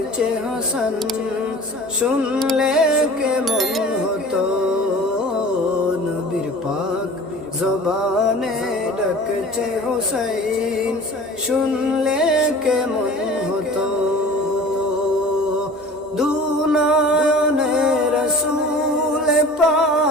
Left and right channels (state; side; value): normal; both; correlation 0.42